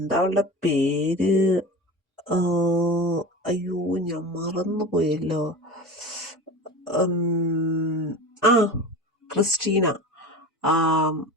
അവളുടെ പേര്? ആ, അയ്യോ, ഞാൻ മറന്നുപോയല്ലോ. ആ ക്രിസ്റ്റീന. ആ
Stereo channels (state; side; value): normal; both; correlation 0.31